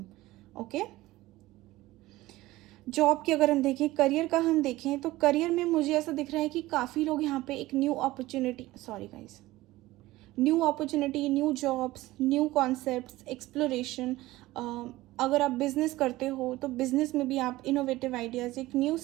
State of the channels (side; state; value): left; quieter; 17.9 dB